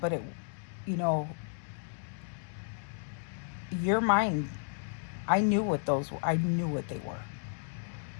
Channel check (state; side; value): silent; right; digital silence